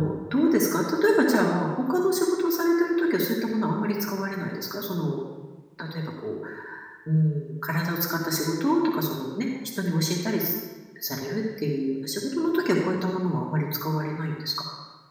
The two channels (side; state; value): both; identical; correlation 1.00